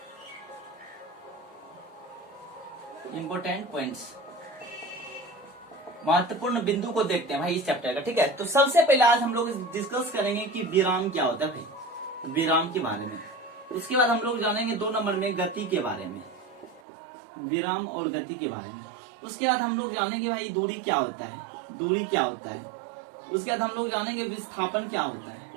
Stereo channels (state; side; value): drops out; left; at 16.8 s